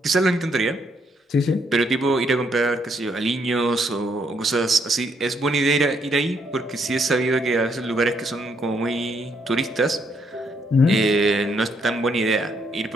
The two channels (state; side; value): normal; both; correlation 0.73